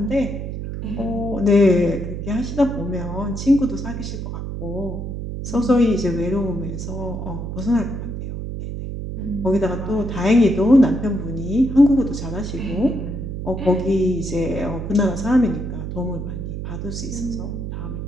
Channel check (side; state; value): right; noise; hum, 6 dB below the sound